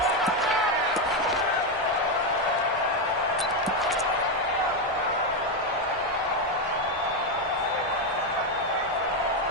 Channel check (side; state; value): both; normal; correlation 0.07